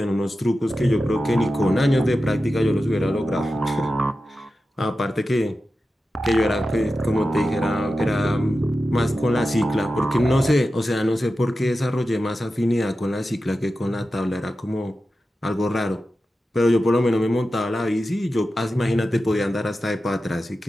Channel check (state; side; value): normal; both; correlation 0.92